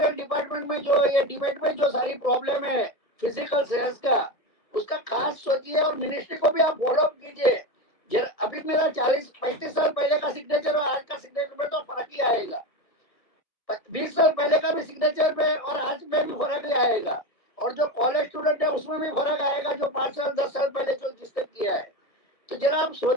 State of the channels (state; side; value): late; right; 1.5 ms